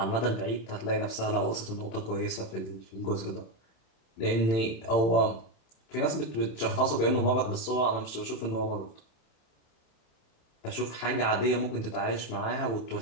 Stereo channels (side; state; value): right; late; 27 ms